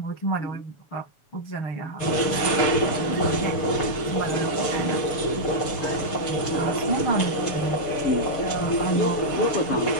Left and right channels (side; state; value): right; late; 7.0 ms